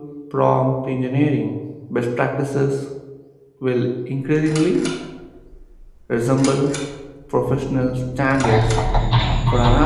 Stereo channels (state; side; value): identical; both; correlation 1.00